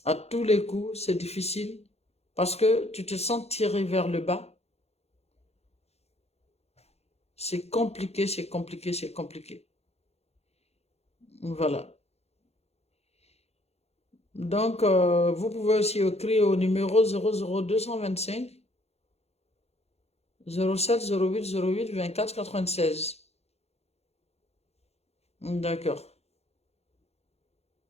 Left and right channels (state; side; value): late; right; 0.30 ms